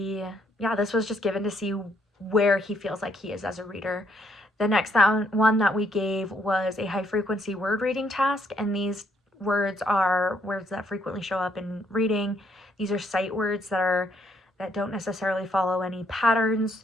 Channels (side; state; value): both; normal; correlation 0.71